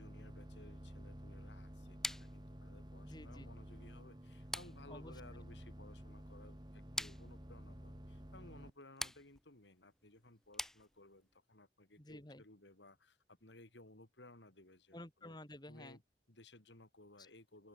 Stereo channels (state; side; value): normal; both; correlation 0.71